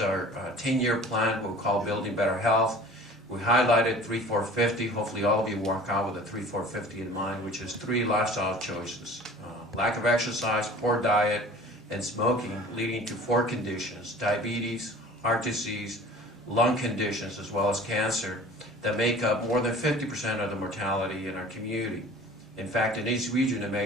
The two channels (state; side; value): normal; both; correlation 0.45